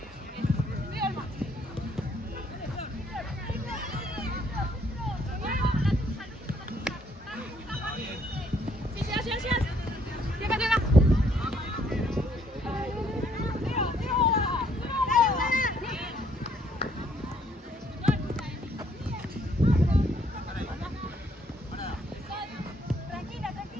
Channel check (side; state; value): both; normal; correlation 0.67